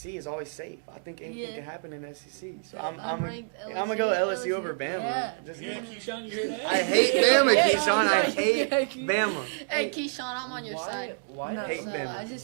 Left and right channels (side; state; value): left; silent; digital silence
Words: is always safe. I think anything Yeah. can happen in the SEC. So Yeah, I'm ranked gonna go LSU over Bama. Yeah. Just Yeah, Keyshawn, you hear that? I hate Yeah, Bama, yeah, Keyshawn. I yeah. hate Bama. Hey, Keyshawn, I'm on your Why? side. Why No, does hate Bama.